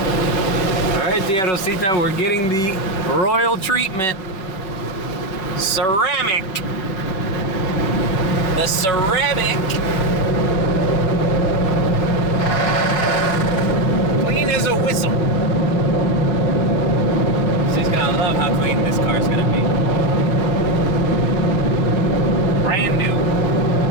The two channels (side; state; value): right; late; 5.3 ms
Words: All right, Tia Rosita, we're getting the royal treatment. Ceramic. The ceramic. Clean as a whistle. She's gonna love how clean this car's gonna be. Brand new.